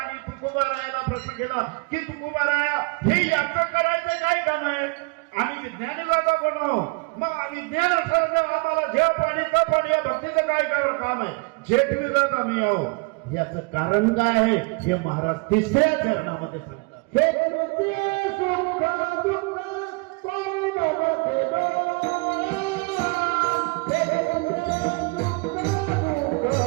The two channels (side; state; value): left; quieter; 29.7 dB